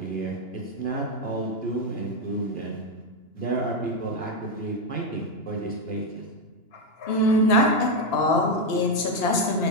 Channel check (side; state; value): right; late; 2.9 ms